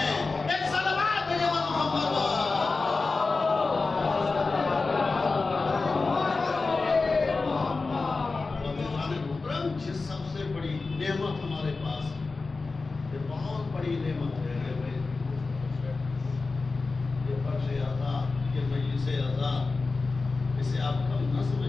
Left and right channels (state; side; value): quieter; right; 3.9 dB